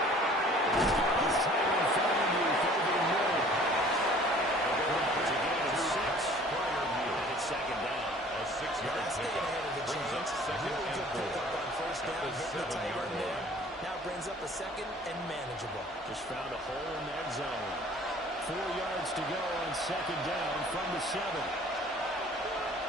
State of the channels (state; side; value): normal; both; correlation 0.51